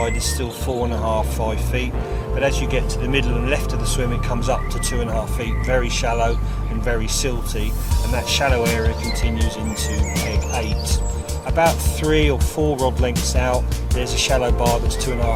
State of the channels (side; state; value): both; identical; correlation 1.00